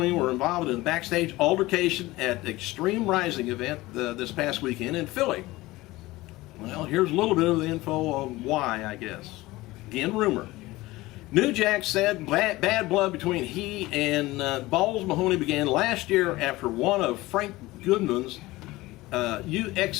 were involved in a backstage altercation at the Extreme Rising event this past weekend in Philly. Well, here's a little bit of the info on why, I guess. Again, rumor. New Jack said bad blood between he and Balls Mahoney began last year after one of Frank Goodman's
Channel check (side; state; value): right; quieter; 19.2 dB